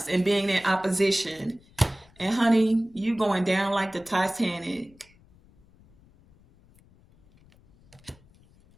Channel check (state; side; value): noise; left; rumble, 29 dB below the sound